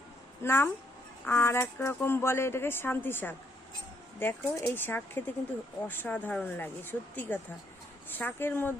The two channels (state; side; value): normal; both; correlation 0.71